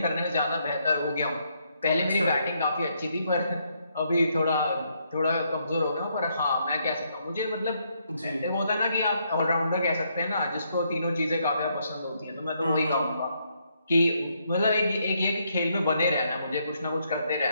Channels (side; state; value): both; inverted; correlation -0.75